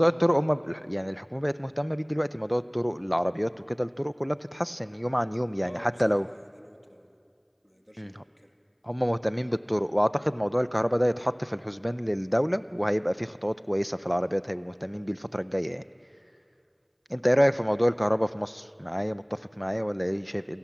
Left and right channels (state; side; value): identical; both; correlation 1.00